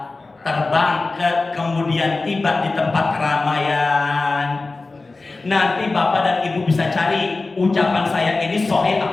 terbang kemudian tiba di tempat keramaian. Nanti Bapak dan Ibu bisa cari ucapan saya ini sahih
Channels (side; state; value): right; quieter; 3.5 dB